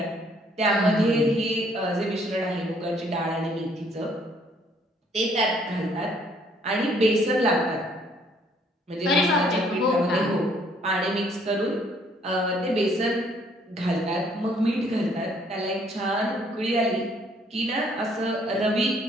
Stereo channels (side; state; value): both; normal; correlation 0.64